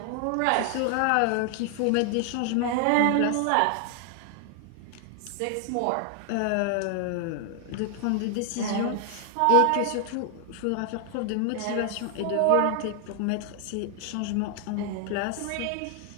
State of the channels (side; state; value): both; different; correlation 0.00